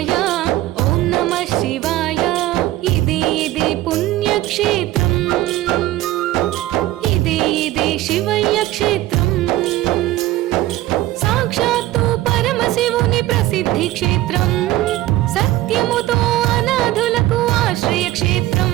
ఓం నమః శివాయ. ఇదే పుణ్యక్షేత్రం. ఇదే శివయ్య క్షేత్రం. సాక్షాత్తు పరమశివుని ప్రసిద్ధి క్షేత్రం. సత్యముతో అనాథులకు ఆశ్రయ క్షేత్రం.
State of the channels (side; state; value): left; quieter; 15.6 dB